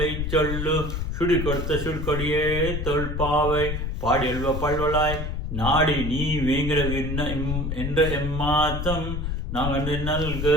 சொல்லு சுடி கொடுத்த சுடுகொடியே தொல்பாவை பாடியல்வ பல்வலாய் நாடி நீ வேங்கிற என்ற ఎమ్మాతం నాగండి నల్గ.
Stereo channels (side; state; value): left; noise; rumble, 3 dB below the sound